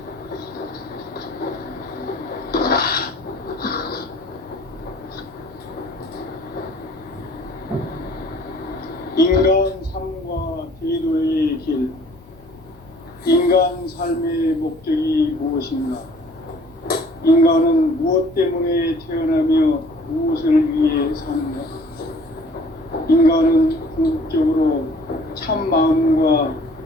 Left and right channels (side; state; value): both; normal; correlation 0.53